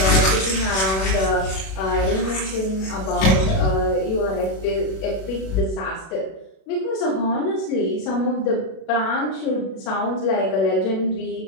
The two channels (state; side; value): late; right; 37 ms